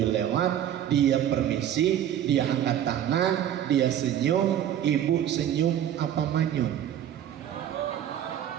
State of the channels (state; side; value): quieter; left; 10.6 dB